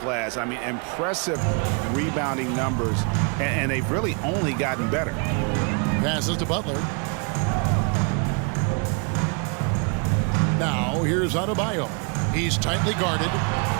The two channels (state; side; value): quieter; left; 37.0 dB